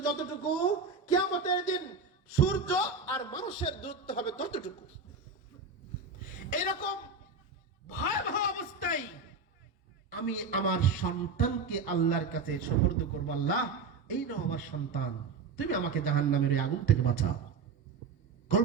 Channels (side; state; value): left; quieter; 4.7 dB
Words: যতটুকু, কিয়ামতের দিন সূর্য আর মানুষের দূরত্ব হবে ততটুকু। এরকম ভয়াবহ অবস্থায় আমি আমার সন্তানকে আল্লাহর কাছে সুপর্দ করব। আল্লাহ, এই নাও আমার সন্তান, তুমি আমাকে জাহান্নামের ওই আগুন থেকে বাঁচাও।